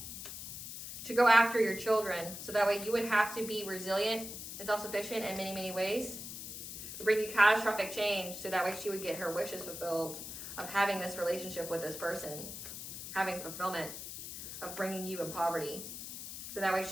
to go after your children, so that way you would have to be resilient and self-sufficient in many, many ways. To bring you catastrophic change, so that way she would get her wishes fulfilled of having this relationship with this person, having fulfillment of bringing you in poverty. So that way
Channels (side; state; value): left; noise; hiss, 9 dB below the sound